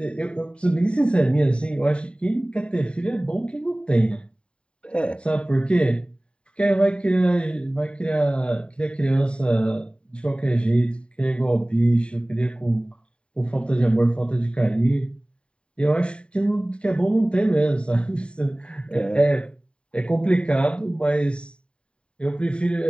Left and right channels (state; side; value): late; right; 0.054 ms